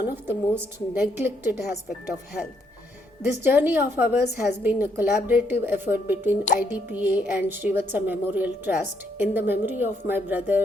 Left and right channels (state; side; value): normal; both; correlation 0.73